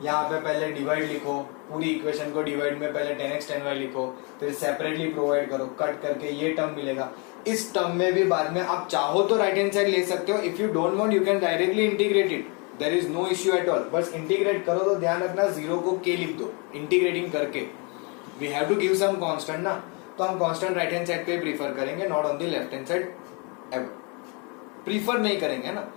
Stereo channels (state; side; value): quieter; right; 32.6 dB